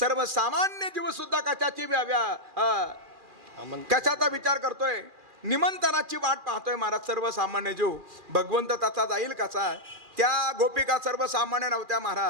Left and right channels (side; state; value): left; late; 2.4 ms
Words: जीवसुद्धा कशाची कशाचा विचार करतोय? निमंत्रणाची वाट पाहतोय महाराज. सर्वसामान्य जीव भगवंत त्याचा जाईल कसा? त्या गोपिका सर्वसामान्य नव्हत्या